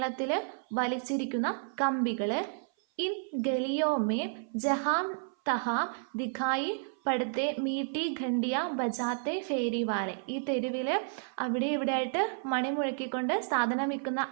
വലിച്ചിരിക്കുന്ന കമ്പികൾ. ഇൻ ഗലിയോമേം ജഹാം തഹാം ദിഖായി പടുത്തെ മീട്ടി ഘണ്ടിയ ബജാത്തെ ഫേരിവാലെ. ഈ തെരുവിൽ അവിടെ ഇവിടെ ആയിട്ട് മണി മുഴക്കിക്കൊണ്ട് സാധനം വിൽക്കുന്ന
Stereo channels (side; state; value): left; silent; 57 dB below the other